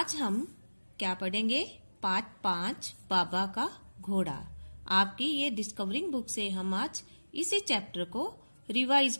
हम क्या पढ़ेंगे, पाठ 5 बाबा का घोड़ा। आपकी ये डिस्कवरिंग बुक से हम आज इसी चैप्टर को रिवाइज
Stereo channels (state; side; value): inverted; both; correlation -1.00